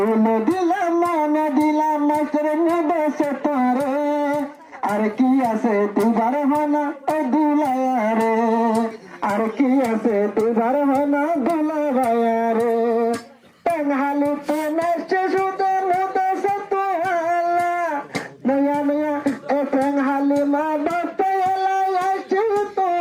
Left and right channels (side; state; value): both; identical; correlation 1.00